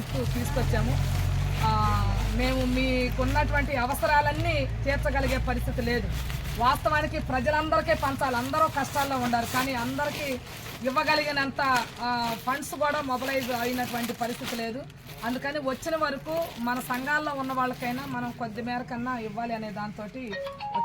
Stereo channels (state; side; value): identical; both; correlation 1.00